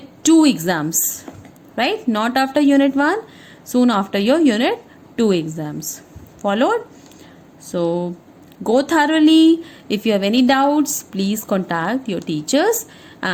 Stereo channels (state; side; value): identical; both; correlation 1.00